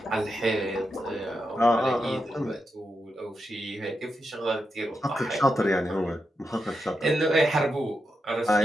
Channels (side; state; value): both; normal; correlation 0.86